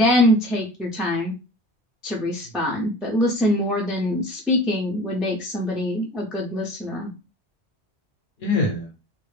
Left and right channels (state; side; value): normal; both; correlation 0.41